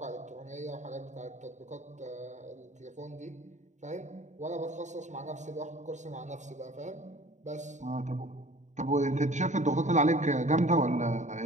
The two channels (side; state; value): left; late; 0.35 ms